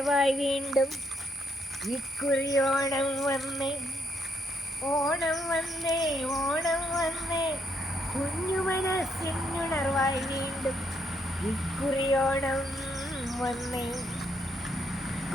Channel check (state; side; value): normal; both; correlation 0.74